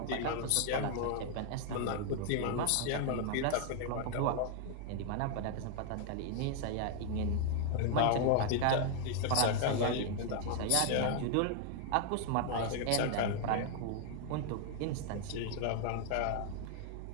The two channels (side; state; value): both; different; correlation 0.00